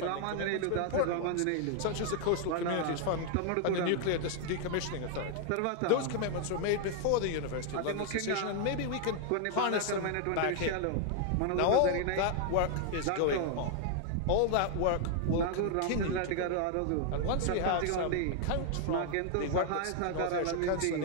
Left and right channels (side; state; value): both; different; correlation 0.00